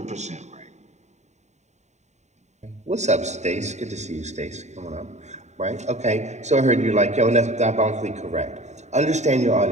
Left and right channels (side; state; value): left; late; 0.33 ms